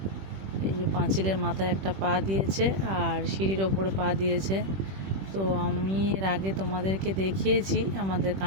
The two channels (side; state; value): left; late; 21 ms